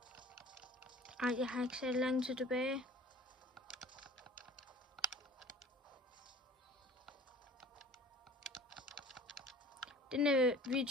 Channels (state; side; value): normal; both; correlation 0.46